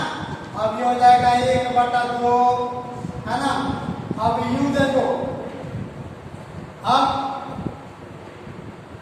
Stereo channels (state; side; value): identical; both; correlation 1.00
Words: अब ये हो जाएगा 1/2, है ना। अब U देखो, अब